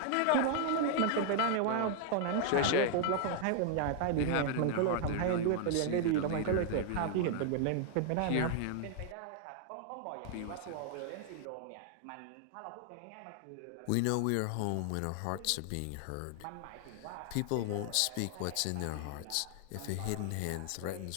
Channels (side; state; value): both; different; correlation 0.00